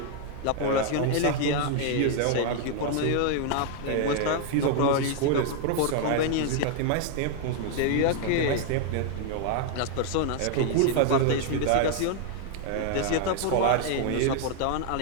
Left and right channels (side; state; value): both; different; correlation 0.00